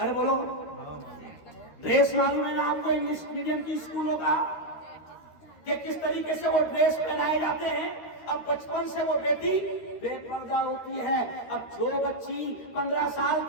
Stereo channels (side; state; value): right; late; 13 ms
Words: بولو، ڈریس معلوم ہے نا آپ کو انگلش میڈیم کی اسکولوں کا کہ کس طریقے سے وہ ڈریس پہنائے جاتے ہیں؟ اب بچپن سے وہ بیٹی بے پردہ ہوتی ہے. اب جو بچی 15 سال